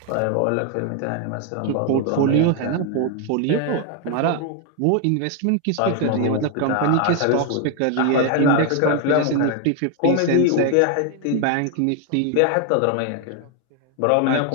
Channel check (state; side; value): different; both; correlation 0.01